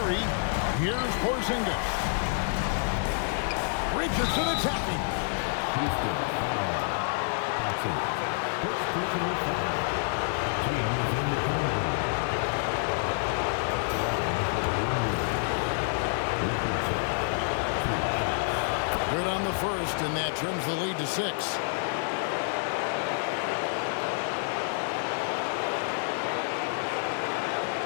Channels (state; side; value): silent; right; 56 dB below the other